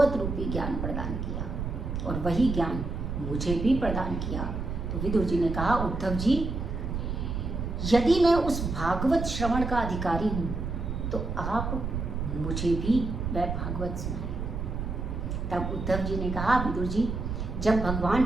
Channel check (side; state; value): right; noise; rumble, 4 dB below the sound